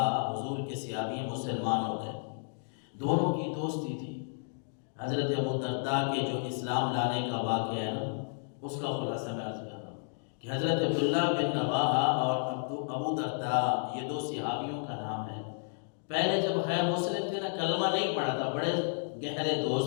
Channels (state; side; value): silent; right; digital silence